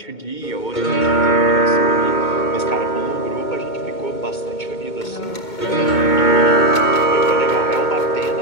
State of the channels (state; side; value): late; right; 2.2 ms